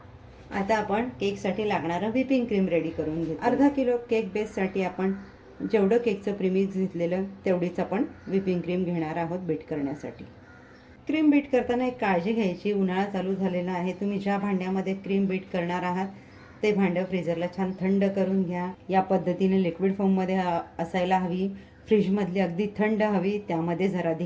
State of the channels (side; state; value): both; identical; correlation 1.00